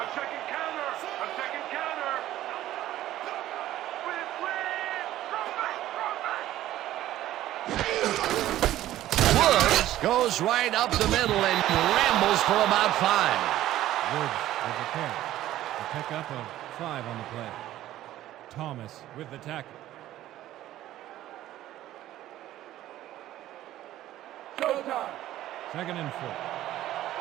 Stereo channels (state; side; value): quieter; left; 13.9 dB